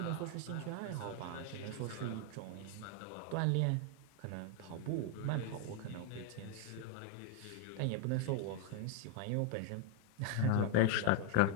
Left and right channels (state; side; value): different; both; correlation 0.00